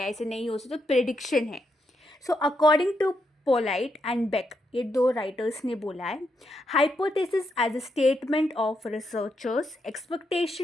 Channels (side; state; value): both; normal; correlation 0.81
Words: ऐसे नहीं हो सकता, तो प्रेडिक्शन है। So according to Polit and Beck, ये दो राइटर्स ने बोला है, hypothesis as a statement of researchers